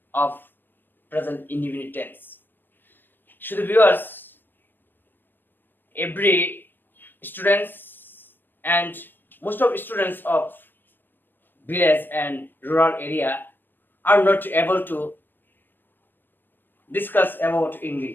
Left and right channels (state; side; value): late; right; 0.094 ms